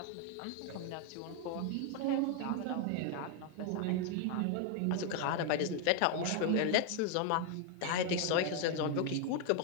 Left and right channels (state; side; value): different; both; correlation 0.00